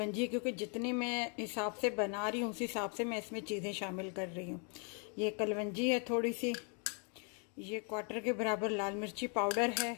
क्योंकि जितनी मैं हिसाब से बना रही हूँ उस हिसाब से मैं इसमें चीज़ें शामिल कर रही हूँ। ये कलवंजी है थोड़ी सी। ये 1/4 के बराबर लाल मिर्ची पाउडर है।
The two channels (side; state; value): right; quieter; 38.7 dB